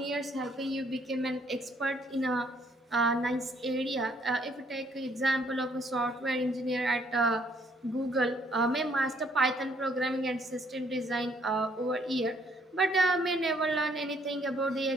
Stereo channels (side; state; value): both; normal; correlation 0.66